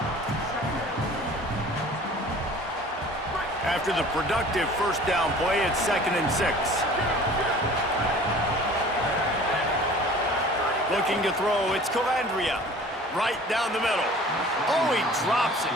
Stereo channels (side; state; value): both; normal; correlation 0.46